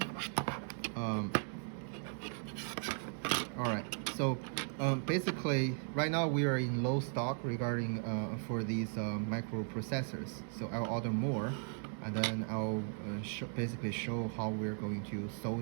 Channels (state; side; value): silent; left; 53 dB below the other